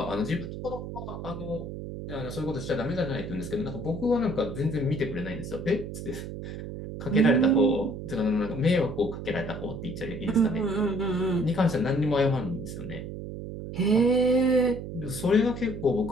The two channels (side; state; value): right; noise; hum, 8 dB below the sound